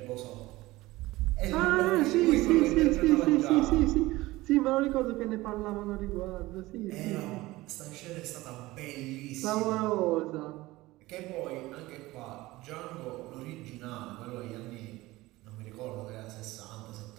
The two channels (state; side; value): quieter; left; 19.1 dB